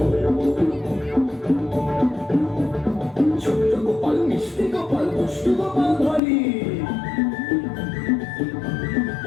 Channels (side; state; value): right; drops out; at 6.2 s